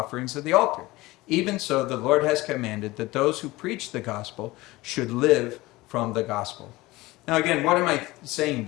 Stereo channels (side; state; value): right; quieter; 19.8 dB